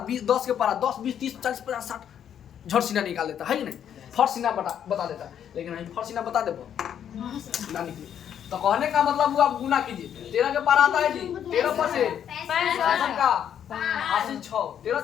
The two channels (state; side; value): quieter; right; 9.2 dB